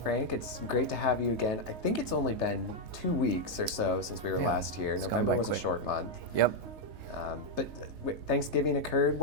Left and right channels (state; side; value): late; left; 3.3 ms